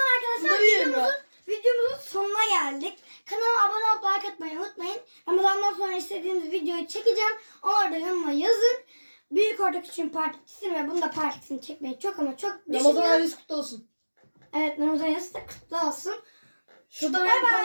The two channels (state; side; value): inverted; both; correlation -1.00